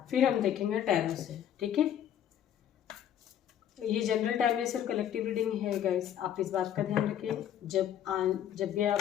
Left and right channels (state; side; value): quieter; right; 10.1 dB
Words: फिर हम देखेंगे टैरो से, ठीक है। ये जनरल टाइमलेस और कलेक्टिव रीडिंग है गाइस, आप इस बात का ध्यान रखिए। जब भी